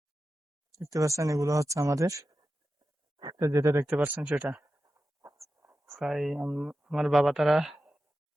দেখতে পাচ্ছেন, এগুলো হচ্ছে আমাদের, তো যেটা দেখতে পাচ্ছেন সেটা প্রায় আমার বাবা তারা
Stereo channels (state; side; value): normal; both; correlation 0.92